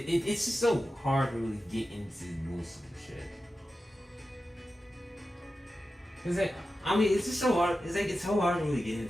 just so hard to really get into most of the shit. Cause it's just so hard. It's so hard to really get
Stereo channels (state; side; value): normal; both; correlation 0.92